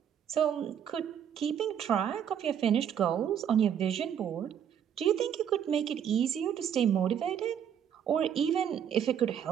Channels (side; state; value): left; quieter; 8.9 dB